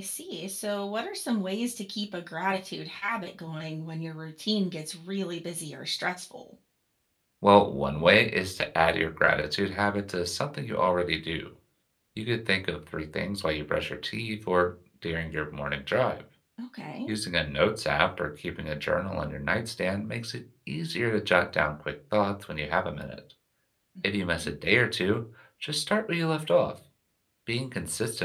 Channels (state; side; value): identical; both; correlation 1.00